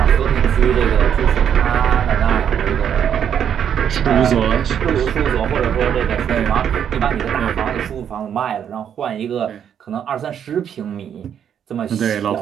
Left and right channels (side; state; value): left; quieter; 8.7 dB